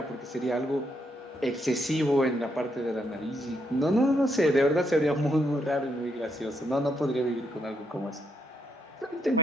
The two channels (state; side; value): normal; both; correlation 0.77